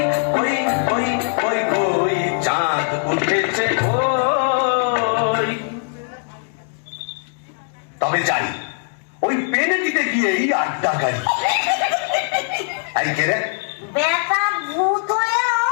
ওই ওই ওই ওই চাঁদ উঠেছে ওই। তবে যাই, ওই পেনেটিতে গিয়েই আড্ডা গাড়ি। এই কে রে? বেটা ভূত হয়েও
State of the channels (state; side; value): silent; right; digital silence